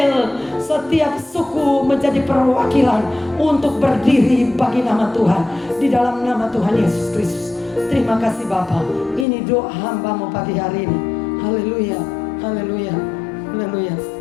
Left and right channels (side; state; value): right; drops out; at 9.2 s